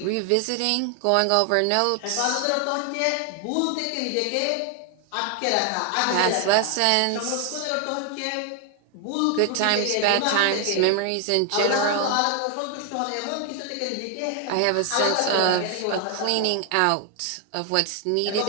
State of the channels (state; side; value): different; both; correlation 0.00